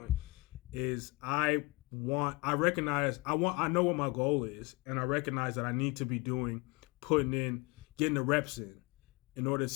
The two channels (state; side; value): quieter; right; 25.1 dB